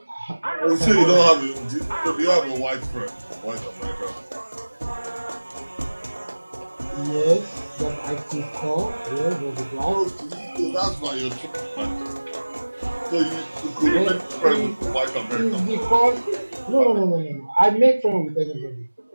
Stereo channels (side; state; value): both; inverted; correlation -1.00